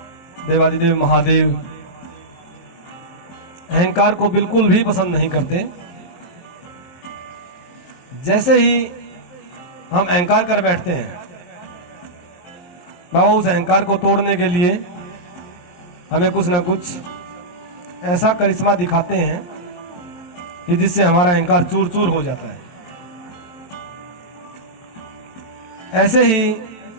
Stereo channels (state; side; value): late; right; 23 ms